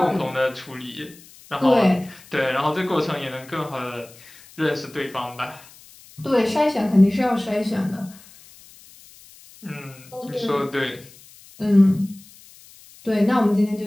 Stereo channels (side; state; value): left; noise; hiss, 23 dB below the sound